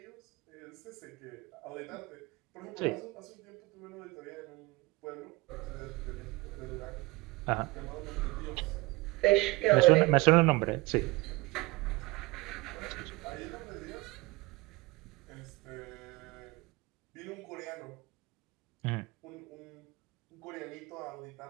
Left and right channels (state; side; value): quieter; left; 22.7 dB